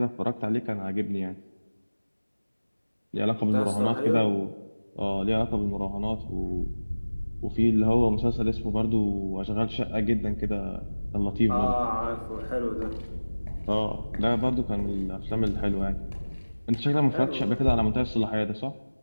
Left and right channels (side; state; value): both; inverted; correlation -1.00